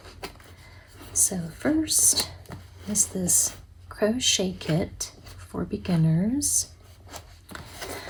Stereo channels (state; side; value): identical; both; correlation 1.00